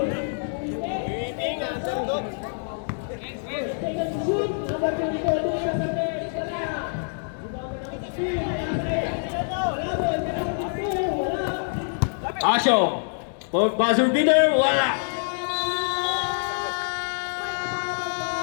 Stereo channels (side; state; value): right; silent; digital silence